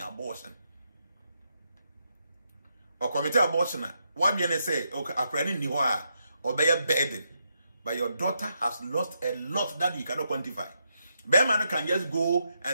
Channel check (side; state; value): both; inverted; correlation -0.81